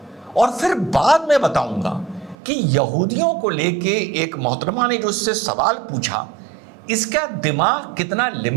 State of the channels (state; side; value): drops out; left; at 2.4 s